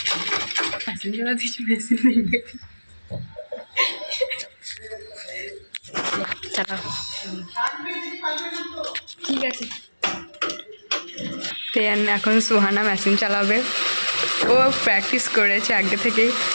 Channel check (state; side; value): inverted; both; correlation -1.00